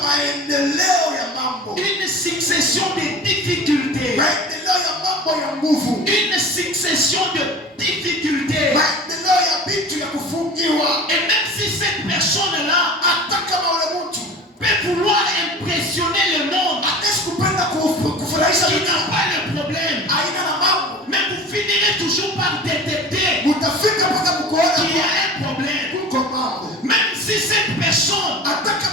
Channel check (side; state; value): both; normal; correlation 0.38